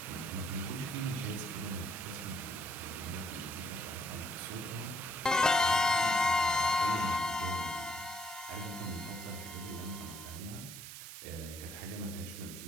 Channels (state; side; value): noise; right; hiss, 10 dB below the sound